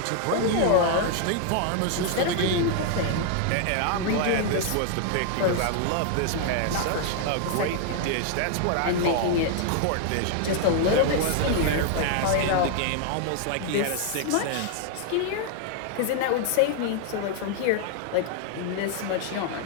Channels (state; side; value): different; both; correlation 0.00